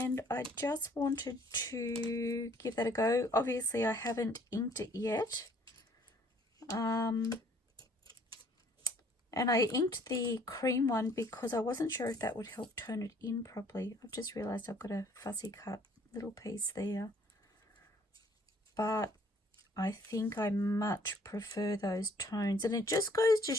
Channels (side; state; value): both; normal; correlation 0.60